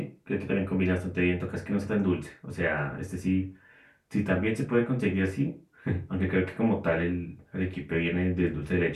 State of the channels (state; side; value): identical; both; correlation 1.00